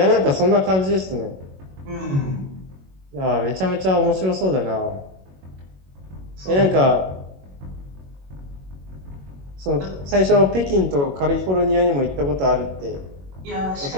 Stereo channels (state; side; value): late; left; 21 ms